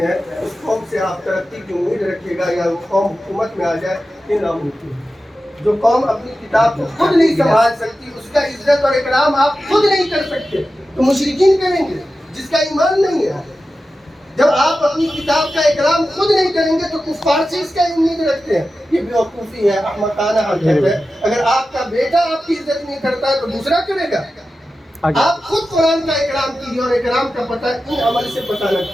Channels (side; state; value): both; normal; correlation 0.93